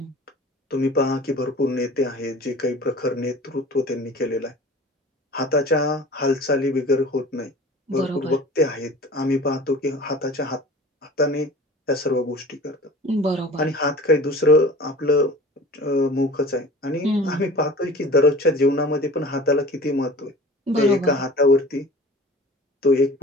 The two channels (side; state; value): both; normal; correlation 0.42